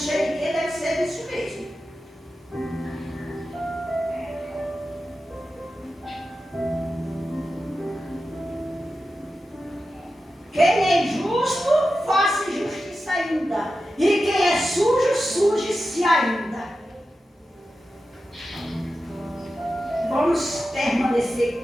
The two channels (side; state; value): both; normal; correlation 0.92